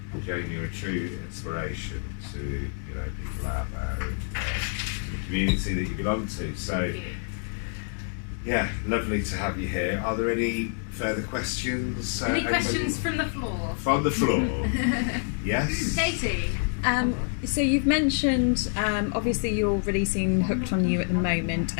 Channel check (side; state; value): right; silent; 55 dB below the other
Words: Jane, you're a true inspiration to people out there and the community that you belong to. So, thank you. yeah, lovely to have you here. Are there any further questions? Any questions from the floor? From the floor. Yes. Katie. So you've mentioned, obviously you're releasing Hooked on You at the moment,